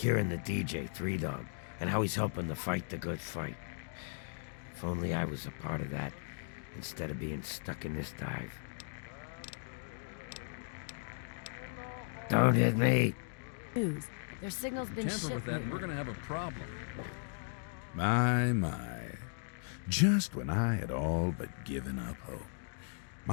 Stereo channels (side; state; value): right; silent; digital silence